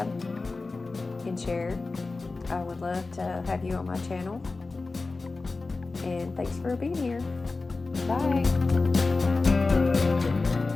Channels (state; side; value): quieter; right; 3.7 dB